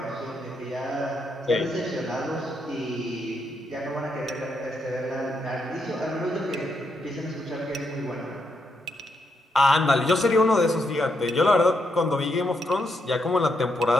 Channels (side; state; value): both; normal; correlation 0.80